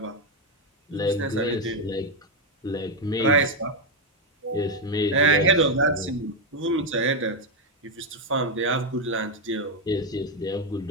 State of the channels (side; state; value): both; normal; correlation 0.05